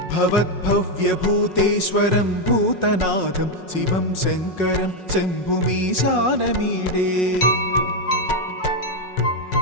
भवद्भव्यभूतेश्वरं भूतनाथं शिवं शङ्करं शम्भुमीशानमीडे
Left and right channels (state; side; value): late; right; 5.4 ms